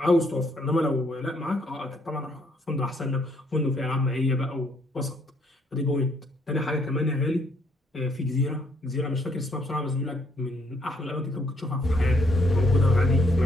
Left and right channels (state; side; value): normal; both; correlation 0.69